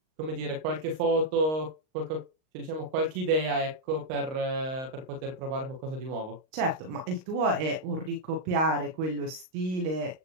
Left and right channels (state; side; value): late; left; 38 ms